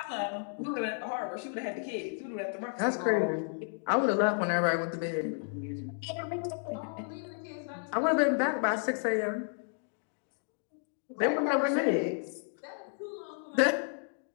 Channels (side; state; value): right; silent; 56 dB below the other